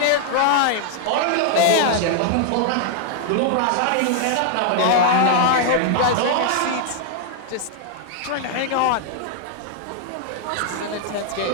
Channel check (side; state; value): both; different; correlation 0.00